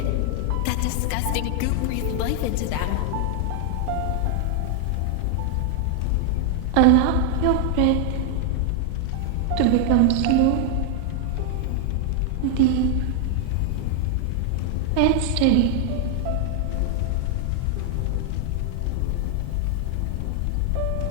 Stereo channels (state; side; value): different; both; correlation 0.00